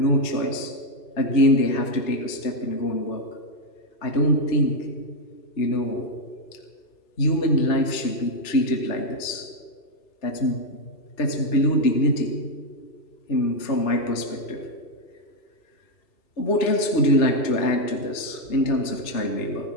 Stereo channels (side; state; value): right; late; 3.3 ms